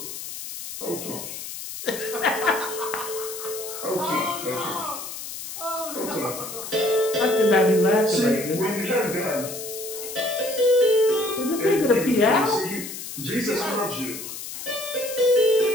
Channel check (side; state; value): left; noise; hiss, 9 dB below the sound